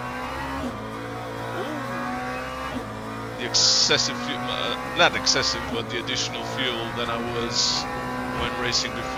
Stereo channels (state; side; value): identical; both; correlation 1.00